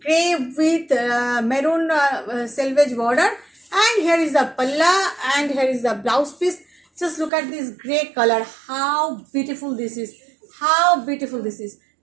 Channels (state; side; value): drops out; left; at 7.3 s